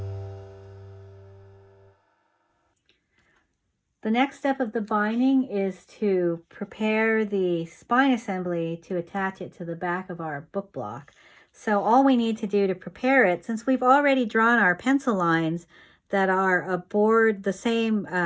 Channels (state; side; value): identical; both; correlation 1.00